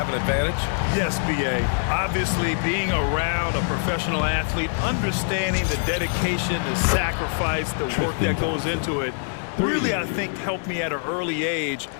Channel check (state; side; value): silent; right; 63 dB below the other